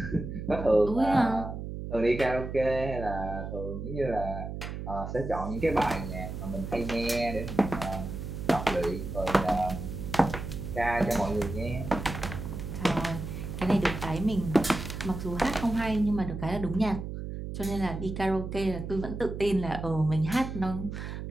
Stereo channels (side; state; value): right; noise; hum, 7 dB below the sound